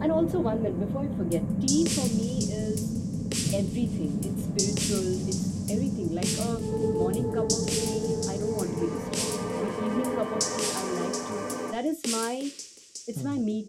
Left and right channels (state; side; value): identical; both; correlation 1.00